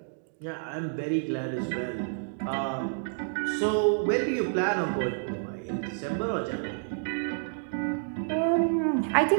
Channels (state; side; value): silent; left; digital silence